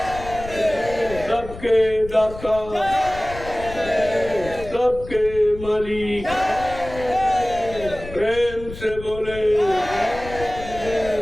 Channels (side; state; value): left; noise; rumble, 13 dB below the sound